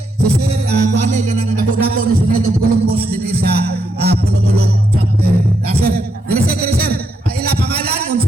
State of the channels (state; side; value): normal; both; correlation 0.79